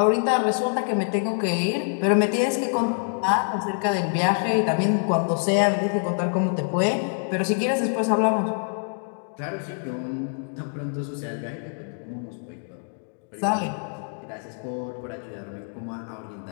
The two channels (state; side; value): silent; right; 61 dB below the other